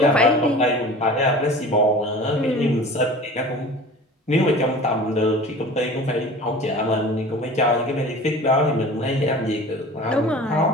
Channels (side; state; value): both; normal; correlation 0.40